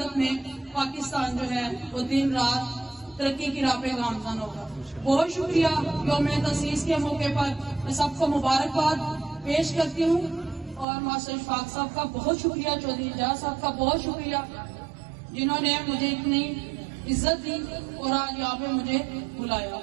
में पाकिस्तान जो है वो दिन रात तरक्की की राह पे गामज़न होगा। बहुत शुक्रिया। यौम तसीस के मौके पर मैं सबको मुबारकबाद पेश करती हूँ। और मास्टर इशफाक साहब का बहुत शुक्रिया, चौधरी एजाज साहब का बहुत शुक्रिया, जिन्होंने मुझे इतनी इज्जत दी और आज यहाँ पे मुझे बुलाया।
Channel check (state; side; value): drops out; left; at 10.9 s